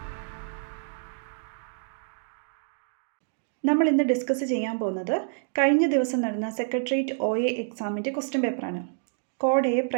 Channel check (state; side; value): silent; left; digital silence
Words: നമ്മൾ ഇന്ന് ഡിസ്കസ് ചെയ്യാൻ പോകുന്നത് കഴിഞ്ഞ ദിവസം നടന്ന സെക്രട്ടേറിയറ്റ് OA എക്സാമിൻ്റെ ക്വസ്റ്റ്യൻ പേപ്പറാണ്. കോഡ് A